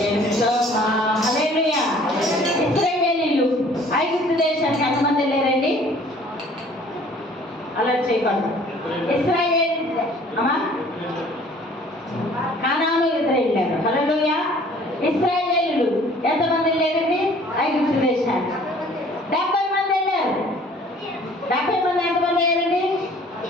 హల్లెలూయా. ఇశ్రాయేలీయులు ఐగుప్తు దేశానికి ఎంతమంది వెళ్ళారండి? అలర్ట్ చేయకండి. ఇశ్రాయేల్ అమ్మా కానాను ఎదురు వెళ్ళారు. హల్లెలూయా. ఇశ్రాయేలీయులు ఎంతమంది వెళ్ళారండి? ఐగుప్తు దేశానికి 70 మంది వెళ్ళారు. 70 మంది ఎంతమంది అయ్యారండి?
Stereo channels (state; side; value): normal; both; correlation 0.53